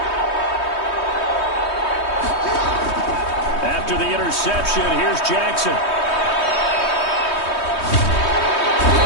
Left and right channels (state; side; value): late; right; 3.2 ms